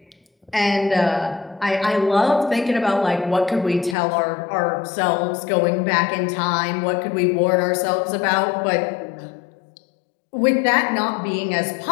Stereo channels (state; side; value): drops out; right; at 4.0 s